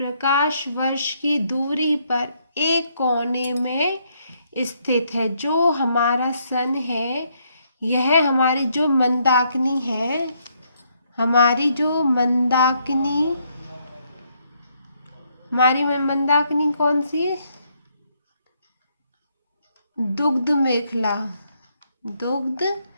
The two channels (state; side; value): inverted; both; correlation -0.73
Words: वर्ष की दूरी पर एक कोने में स्थित है। जो हमारा सन है, यह हमारी जो मंदाकिनी है, हमारी मंदाकिनी कौन सी है? दुग्ध